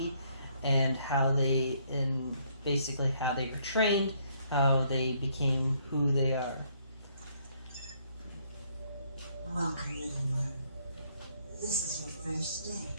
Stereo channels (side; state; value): both; inverted; correlation -0.68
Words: and how they, and basically how they were trained, how they became who they are. Welcome, little one. This is your first day.